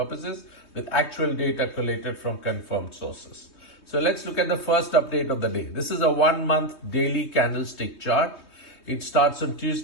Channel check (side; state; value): right; late; 3.2 ms